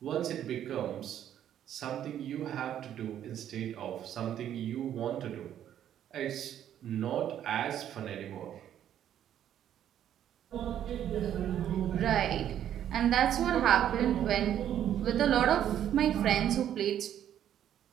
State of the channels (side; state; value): left; quieter; 10.5 dB